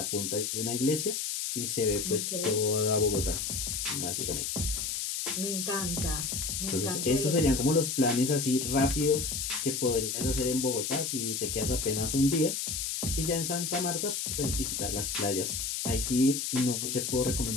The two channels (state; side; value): noise; left; hiss, 2 dB below the sound